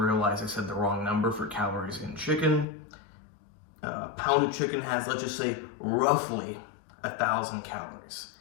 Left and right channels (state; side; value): drops out; right; at 2.7 s